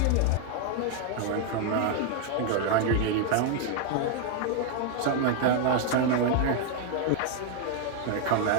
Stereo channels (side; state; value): both; different; correlation 0.00